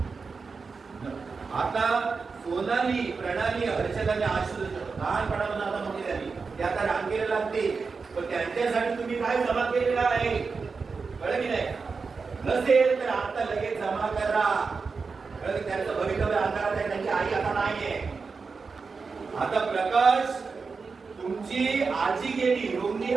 आता सोनाली, प्रणाली, हर्षदाने आशुष लहानपणापासून आता मोठी झाली, ते आता रांगेला लागते, पण त्यांच्यासाठी तुम्ही काय जमा केलेलं आहे कळलं की नाही? नसेल तर आता लगेच जमा करा. त्यांचं भवितव्य अंधारात आहे, त्यांची आई आता नाहीये. आता प्रकाश, तुमची आजी गेली, रोगली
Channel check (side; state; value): left; quieter; 4.8 dB